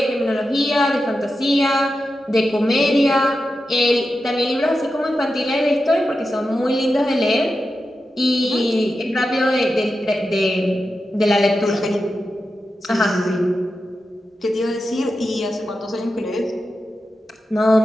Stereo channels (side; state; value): both; normal; correlation 0.90